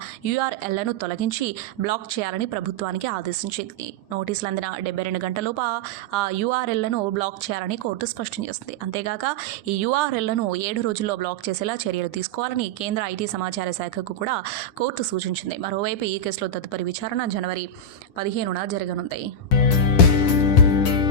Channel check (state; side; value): late; right; 10 ms